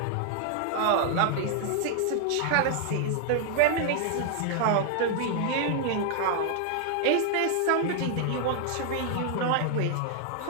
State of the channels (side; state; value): both; different; correlation -0.01